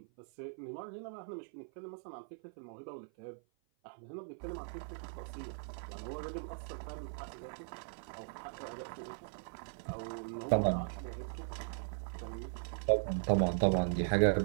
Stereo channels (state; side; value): silent; left; 52 dB below the other